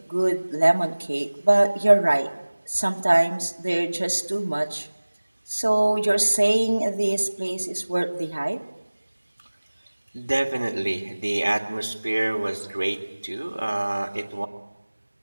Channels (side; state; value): both; inverted; correlation -1.00